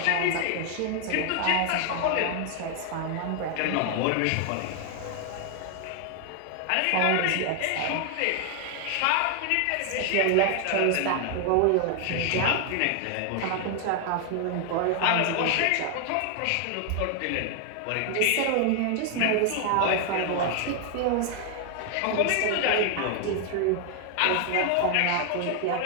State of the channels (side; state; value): both; different; correlation 0.00